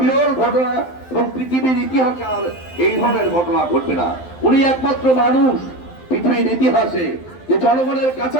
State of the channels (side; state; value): right; late; 12 ms